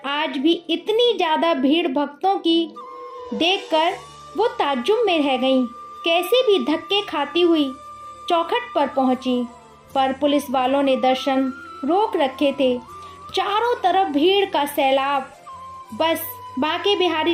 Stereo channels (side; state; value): both; identical; correlation 1.00